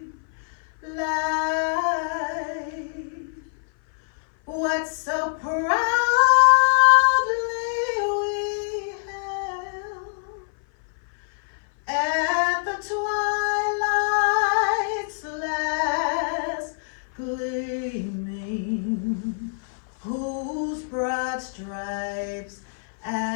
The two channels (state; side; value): silent; right; 57 dB below the other